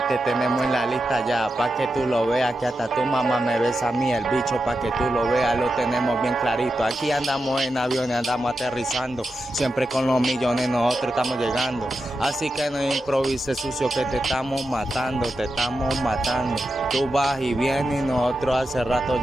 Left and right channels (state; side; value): normal; both; correlation 0.89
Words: te tenemos en la lista ya, pa' que tú lo veas, que hasta tu mamá me besa a mí el bicho, pa' que tú lo veas, lo tenemos bien clarito. Aquí andamos en aviones, andamos aterrizando, siempre con los millones nosotros estamos llegando. Así que no improvises sucio que te estamos matando, te estamos matando. Tú vas y vienes y nosotros hace rato